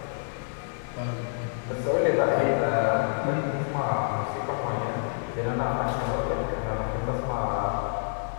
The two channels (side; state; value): right; silent; digital silence